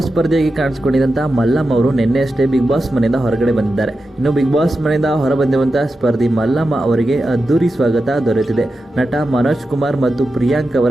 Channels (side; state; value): both; normal; correlation 0.91